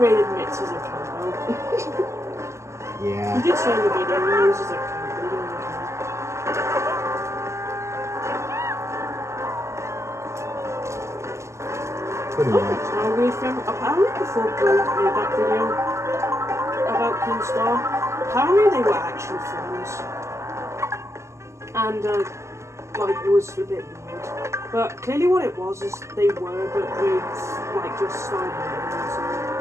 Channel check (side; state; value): left; late; 0.13 ms